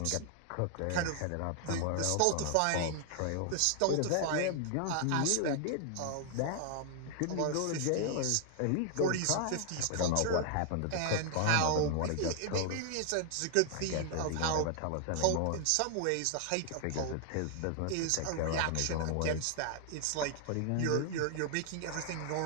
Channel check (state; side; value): different; both; correlation 0.00